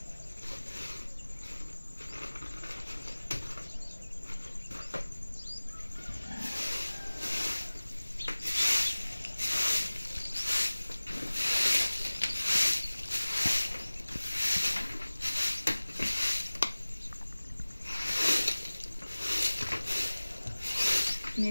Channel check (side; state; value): both; inverted; correlation -1.00